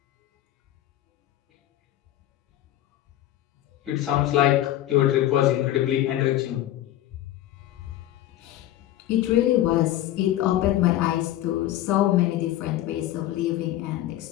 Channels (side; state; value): right; quieter; 13.7 dB